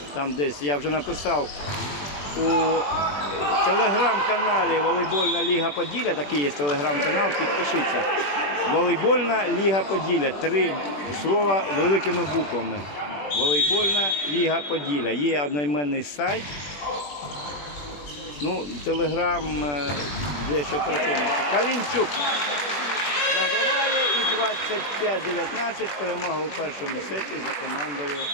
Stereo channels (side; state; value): right; late; 20 ms